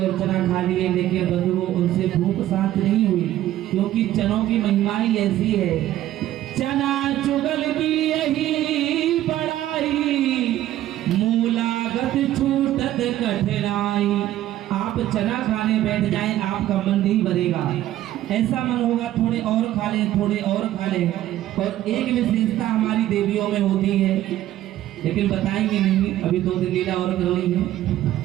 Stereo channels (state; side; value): quieter; left; 13.6 dB